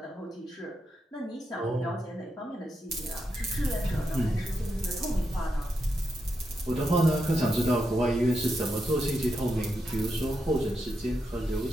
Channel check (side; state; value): both; normal; correlation 0.85